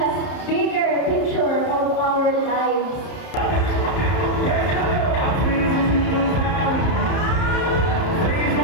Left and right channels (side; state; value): right; late; 31 ms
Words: bigger picture of our lives.